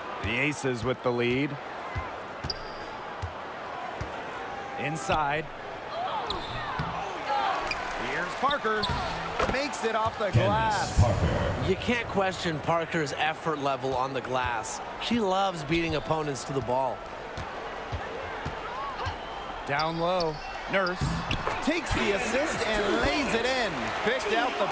The Aces with the lead. Inside. Here's Parker. Makes it off the glass. You can't question Parker's effort level on the glass. She loves beating opponents to the ball. Down low. Nurse. takes the assist and lays it in. Picked out the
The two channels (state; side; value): identical; both; correlation 1.00